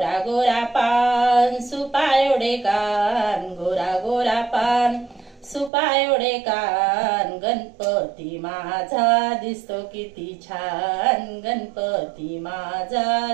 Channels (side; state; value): left; drops out; at 5.7 s